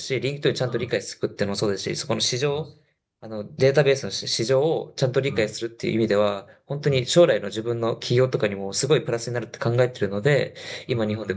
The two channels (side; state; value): both; identical; correlation 1.00